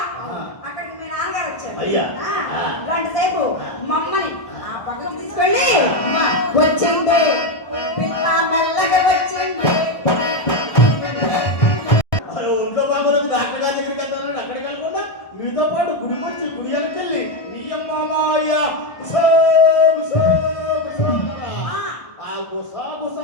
అక్కడికి మీ నాన్నగారు వచ్చారు. అయ్యా. గంట సేపు మమ్మని ఆ పక్కకు తీసుకెళ్ళి వచ్చింది పిల్ల మెల్లగా వచ్చింది. అరే ఒంట్లో బాగోలేదు, డాక్టర్ గారి దగ్గరికి వెళ్తాను. అక్కడికి వెళ్ళకుండా మీతో పాటు గుడికి వచ్చి గుడి వెళ్ళి మీ అమ్మాయ ఆ గుసా గుసా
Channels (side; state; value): right; late; 1.6 ms